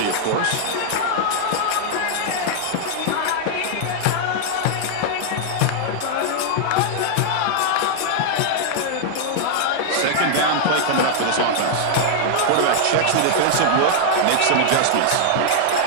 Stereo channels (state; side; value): different; both; correlation -0.01